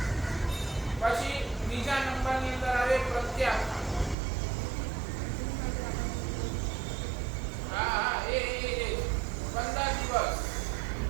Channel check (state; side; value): drops out; left; at 4.2 s